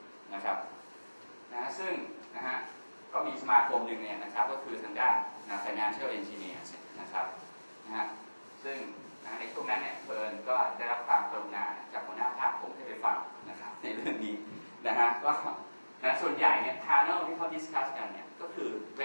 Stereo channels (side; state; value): both; inverted; correlation -1.00